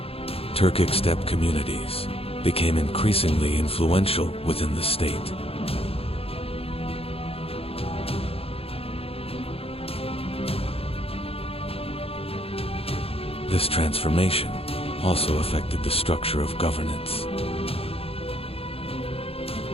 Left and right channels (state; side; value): late; right; 0.28 ms